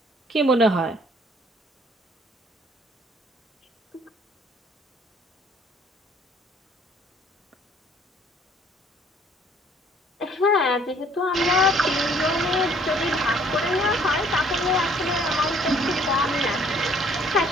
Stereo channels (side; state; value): both; normal; correlation 0.60